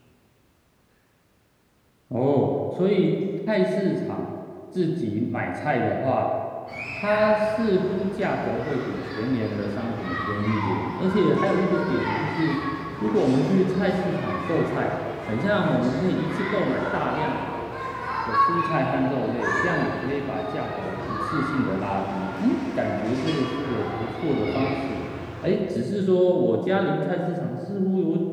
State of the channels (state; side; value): identical; both; correlation 1.00